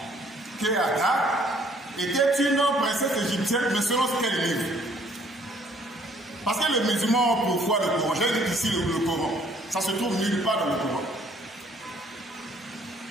qu'Agar était une princesse égyptienne, mais selon ce qu'elle livre. Parce que les musulmans ont pour foi le Coran. J'ai dit ici le Coran. Ça se trouve nulle part dans le Coran.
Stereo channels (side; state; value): both; normal; correlation 0.62